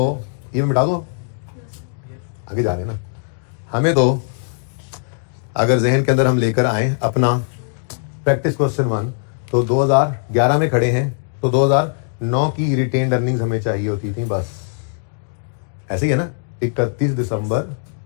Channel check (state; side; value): silent; right; digital silence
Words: ये मैं मिटा दूं, आगे जा रहे हैं ना। हमें तो अगर जहन के अंदर हम लेकर आए अपना प्रैक्टिस क्वेश्चन 1, तो 2011 में खड़े हैं, तो 2009 की रिटेन्ड अर्निंग्स हमें चाहिए होती थी, बस ऐसे ही है ना।